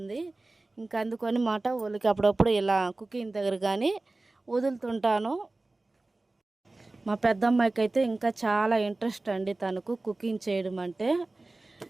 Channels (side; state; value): left; quieter; 3.0 dB